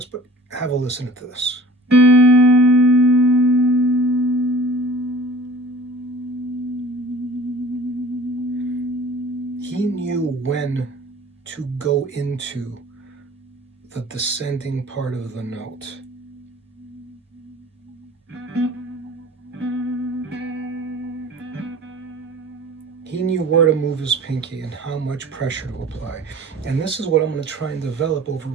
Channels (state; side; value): normal; both; correlation 0.44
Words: but have a listen to this. He knew when to go into the descending part of the note. He knew where to move his pinky and how much pressure to apply. And this is what I'm going to try and develop over